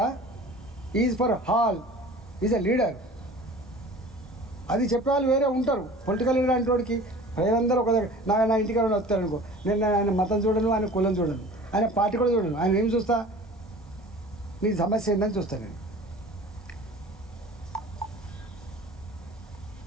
is for all, is a leader. అది చెప్పేవాళ్ళు వేరే ఉంటారు. పొలిటికల్ లీడర్ అంటే వాడికి ప్రజలందరూ ఒక దగ్గర నా ఇంటికి వస్తారనుకో, నేను ఆయన మతం చూడను, ఆయన కులం చూడను, ఆయన పార్టీ కూడా చూడను. ఆయన ఏం చూస్తా? నీ సమస్య ఏంటని చూస్తాను నేను.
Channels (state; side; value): normal; both; correlation 0.43